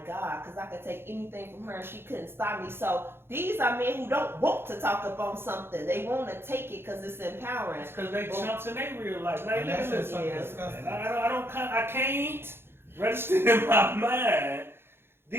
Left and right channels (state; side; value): late; left; 0.11 ms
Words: God because I could take anything from her and she couldn't stop me. So these are men who don't want to talk up on something. They want to take it because it's empowering. It's because they chumps in their real life. Like, And that look at shit's this. fucking Yeah. disgusting. And I can't register in my mind.